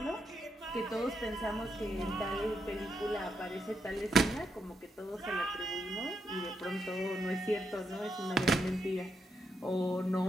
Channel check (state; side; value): normal; both; correlation 0.81